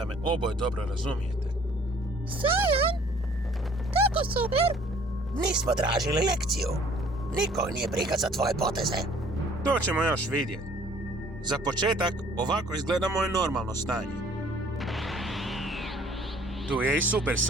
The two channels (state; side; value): normal; both; correlation 0.56